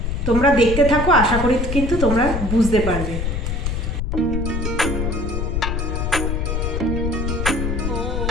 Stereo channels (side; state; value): left; noise; rumble, 1 dB below the sound